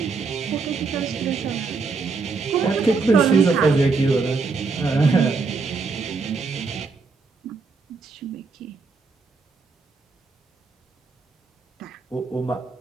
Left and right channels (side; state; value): left; quieter; 4.4 dB